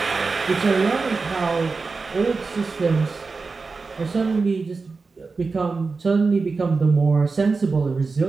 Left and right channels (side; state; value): left; quieter; 4.3 dB